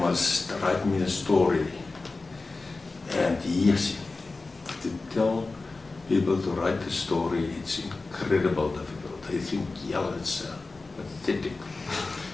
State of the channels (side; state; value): right; quieter; 3.6 dB